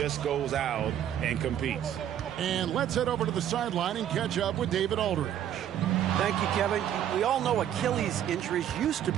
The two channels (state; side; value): quieter; left; 10.5 dB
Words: goes out and competes. And let's head over to the sideline and catch up with David Aldridge. Thank you, Kevin. We all know Achilles injuries used to